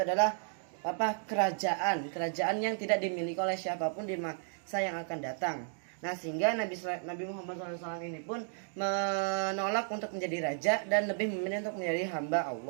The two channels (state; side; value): silent; left; 55 dB below the other